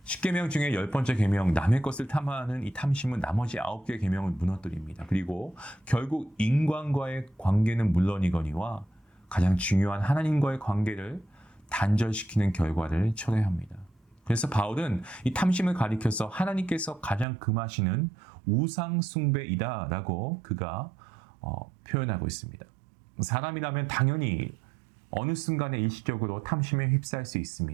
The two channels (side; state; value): left; drops out; at 17.2 s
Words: 10계명 중에 10번째 계명, 남의 것을 탐하는 이 탐심은 나머지 9개의 계명을 무너뜨립니다. 그리고 결국 인간과의 관계는 물론이거니와 가장 중요한 하나님과의 관계를 단절시키는 결과를 초래합니다. 그래서 바울은 이 탐심을 가리켜서 하나님께서 가장 금하시는 우상 숭배이다라고 그가 표현하고 있습니다. 사람이라면 당연히 어느 순간에 일시적으로 탐심에 휩싸일 수